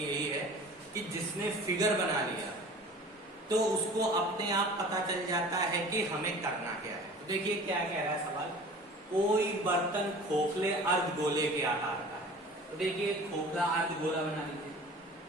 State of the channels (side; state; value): both; normal; correlation 0.42